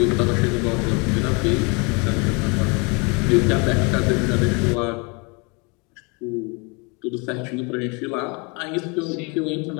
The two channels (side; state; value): right; quieter; 31.1 dB